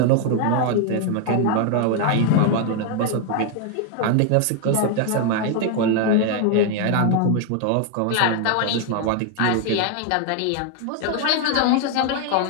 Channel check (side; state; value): both; different; correlation 0.00